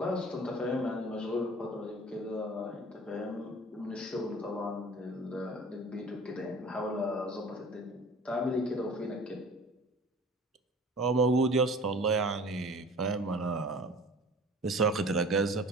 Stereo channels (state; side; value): normal; both; correlation 0.44